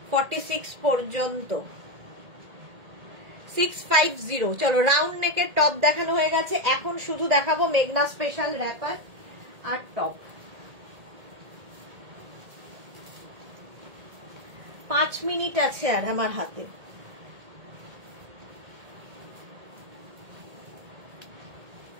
46 পর্যন্ত। 650। চলো, রাউন্ড নেকের টপ দেখানো হয়ে গেছে, এখন শুধু দেখাবো মেঘনা স্পেশাল র্যাপার আর টপ। 5 মিনিট আছে আর আমার হাতে।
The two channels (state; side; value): late; left; 1.8 ms